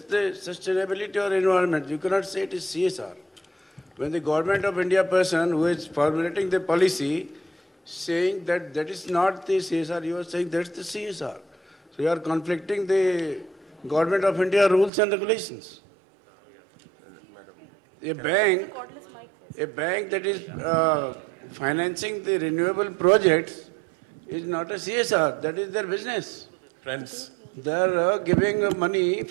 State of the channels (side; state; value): left; drops out; at 14.9 s